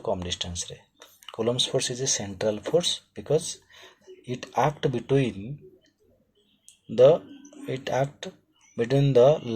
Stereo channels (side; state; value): both; identical; correlation 1.00